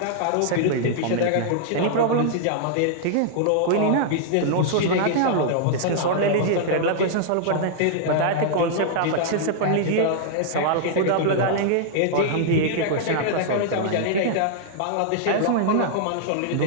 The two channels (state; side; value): different; both; correlation -0.01